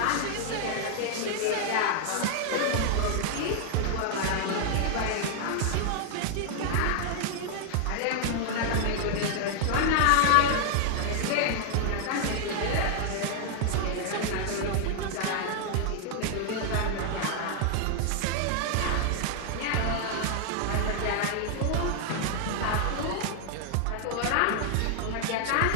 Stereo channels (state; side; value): different; both; correlation 0.00